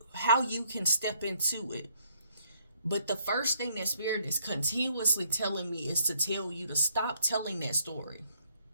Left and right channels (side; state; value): both; inverted; correlation -0.69